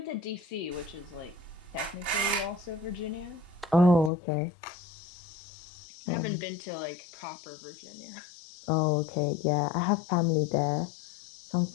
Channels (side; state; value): right; drops out; at 4.1 s